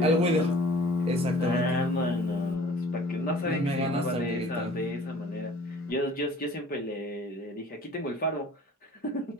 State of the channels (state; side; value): normal; both; correlation 0.49